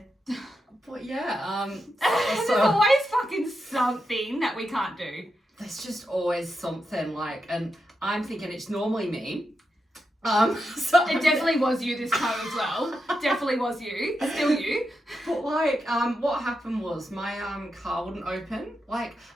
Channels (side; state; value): both; normal; correlation 0.87